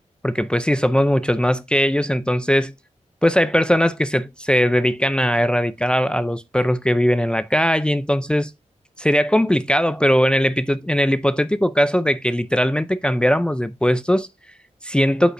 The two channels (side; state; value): both; normal; correlation 0.94